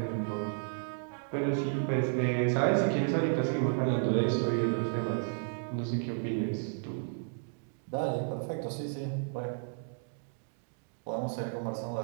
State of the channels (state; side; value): silent; left; 56 dB below the other